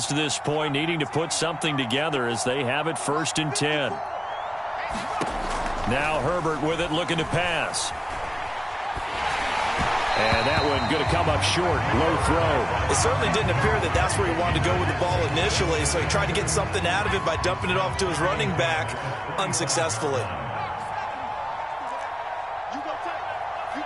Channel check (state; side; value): identical; both; correlation 1.00